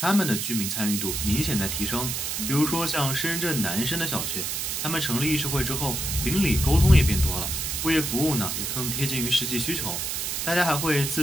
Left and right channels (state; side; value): noise; right; hiss, 2 dB below the sound